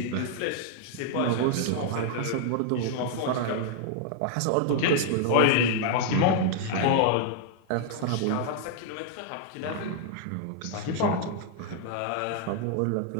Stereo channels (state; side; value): different; both; correlation -0.01